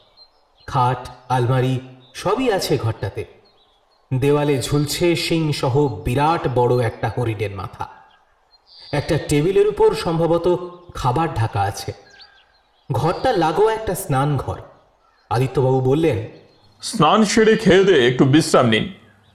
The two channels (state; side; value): identical; both; correlation 1.00